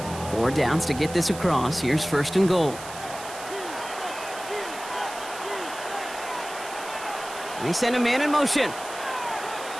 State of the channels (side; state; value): right; noise; hiss, 13 dB below the sound